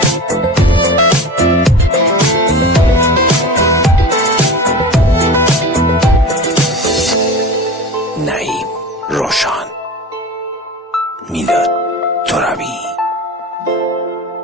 نعیم روشان، میلاد ترابی.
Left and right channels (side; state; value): both; normal; correlation 0.33